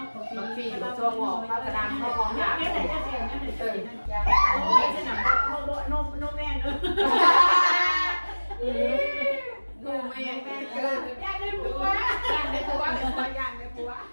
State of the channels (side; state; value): both; inverted; correlation -1.00